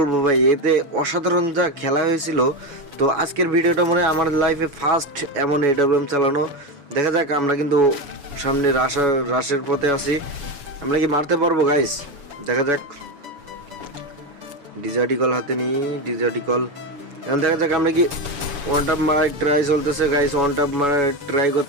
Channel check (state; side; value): late; left; 7.1 ms